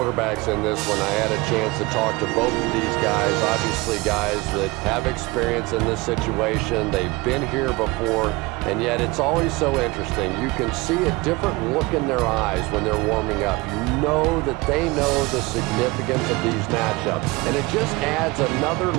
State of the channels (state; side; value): quieter; left; 22.9 dB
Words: in this one. I had a chance to talk to both of these guys, obviously guys that have experience in this situation. They've been here before, and yet it's always so interesting. You can see a different look in their eyes when they're warming up. You know that they know the significance of these matchups, and it just adds another